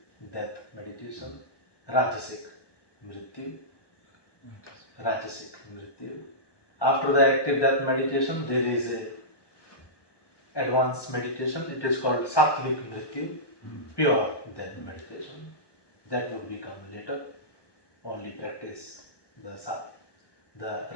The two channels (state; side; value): late; right; 1.2 ms